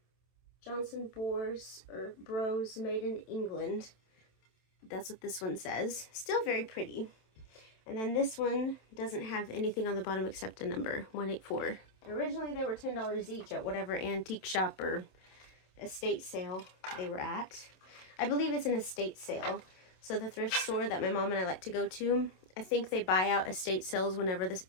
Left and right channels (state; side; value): late; right; 27 ms